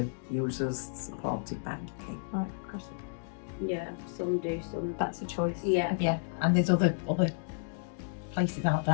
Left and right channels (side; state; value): right; silent; digital silence